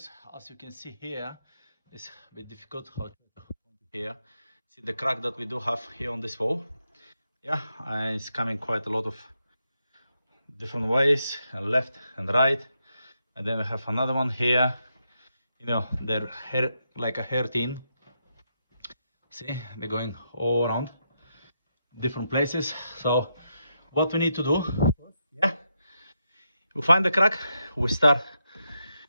As you can see here, it's a bit difficult how to here. See the crack that we do have here on this wall. Yeah, and it's coming quite a lot of different ways, left and right. And then we have another one here. You know, they're hair, like a hair tin. See, they're going all around different places. So what we need to do, yeah, we find the crack, we start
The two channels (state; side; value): inverted; both; correlation -0.83